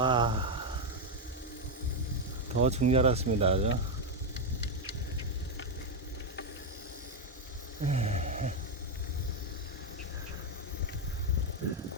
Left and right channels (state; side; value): normal; both; correlation 0.04